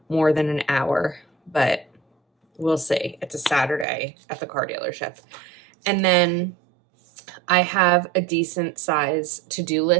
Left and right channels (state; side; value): drops out; left; at 3.9 s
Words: more than an hour, but we'll see. It's a Saturday at the car dealership. And then I have a decent size to-do